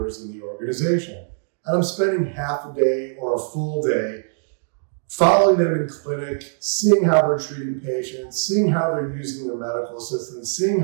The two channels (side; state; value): left; silent; digital silence